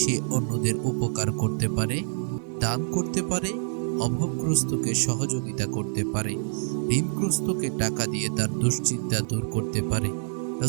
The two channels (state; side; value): silent; left; digital silence